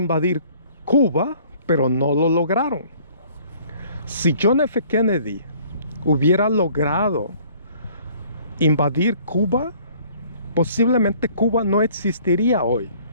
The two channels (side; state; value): both; inverted; correlation -0.56